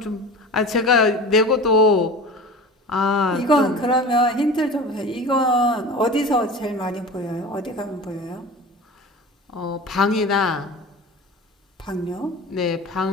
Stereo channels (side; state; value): both; normal; correlation 0.35